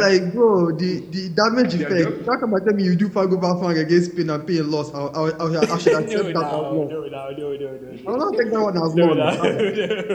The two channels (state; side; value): identical; both; correlation 1.00